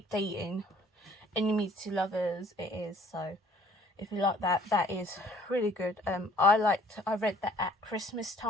Dating, Enemies to Lovers it is, so if you like that, that is really good. I read that at Christmas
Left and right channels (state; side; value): normal; both; correlation 0.57